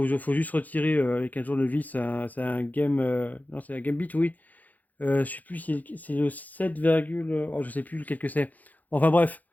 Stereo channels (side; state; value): right; late; 0.081 ms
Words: juste retirer avec un tournevis. C'est un game. Non, c'est un Gambit, oui. Je sais plus si c'est le 7, oh, je sais plus lequel que c'est. Enfin bref,